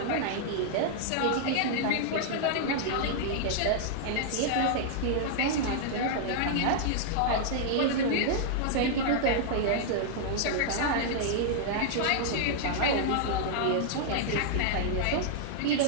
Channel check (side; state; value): both; different; correlation -0.01